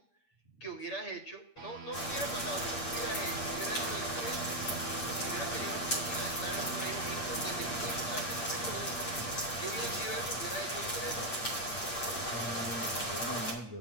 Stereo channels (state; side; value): late; right; 8.6 ms